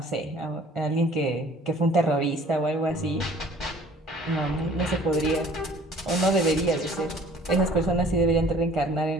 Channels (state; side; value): normal; both; correlation 0.52